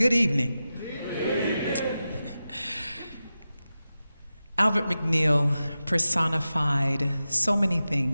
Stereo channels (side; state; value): both; inverted; correlation -0.93